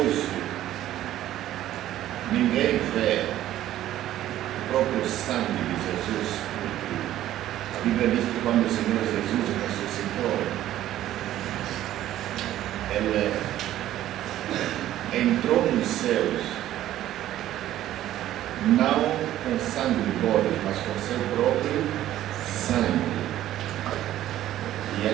ninguém vê o próprio sangue de Jesus. Porque a Bíblia diz que quando o Senhor Jesus ressuscitou, Ele entrou nos céus, não com sangue de bode, mas com seu próprio sangue. E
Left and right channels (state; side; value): quieter; left; 13.2 dB